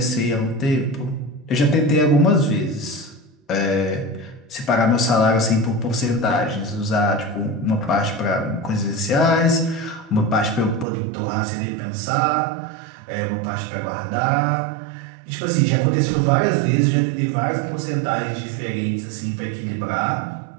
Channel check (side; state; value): left; drops out; at 10.9 s